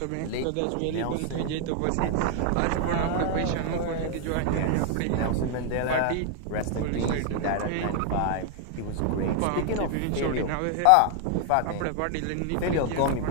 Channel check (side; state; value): both; different; correlation 0.00